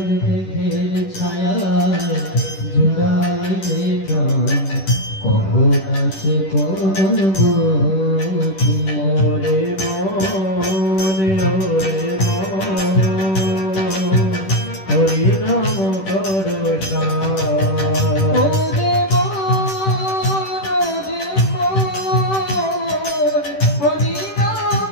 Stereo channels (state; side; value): late; right; 10 ms